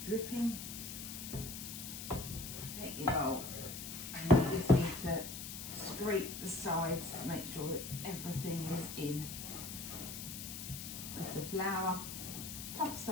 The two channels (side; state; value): left; noise; hiss, 8 dB below the sound